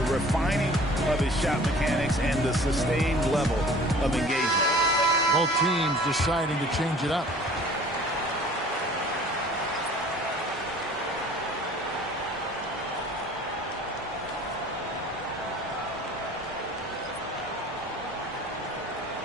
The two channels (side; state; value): both; normal; correlation 0.48